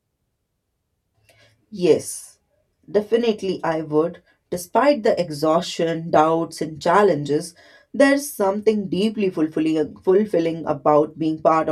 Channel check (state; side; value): identical; both; correlation 1.00